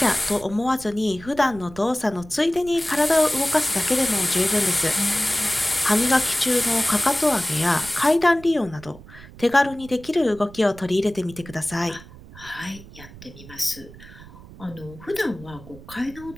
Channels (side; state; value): right; noise; rumble, 18 dB below the sound